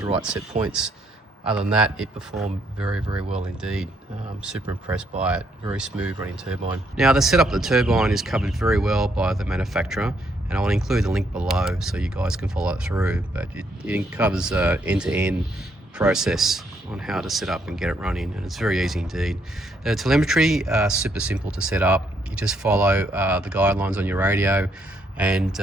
right set points. Other than that, it performed very, very well indeed. Super impressed by it. Very smooth running turbine. Now, the setup of the turbine is covered very well by the manufacturer, and I'll include the link below so you guys can follow it through. But it covers end-to-end process on how to set up and get it running, and it's very easy indeed. The telemetry, super simple to set up. You just follow the guidelines on your radio, and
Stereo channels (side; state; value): both; normal; correlation 0.73